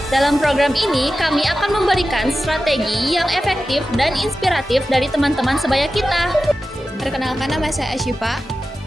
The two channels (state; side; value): normal; both; correlation 0.93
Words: Dalam program ini, kami akan memberikan strategi yang efektif dan inspiratif dari teman-teman sebaya kita. Perkenalkan, nama saya Asyifa.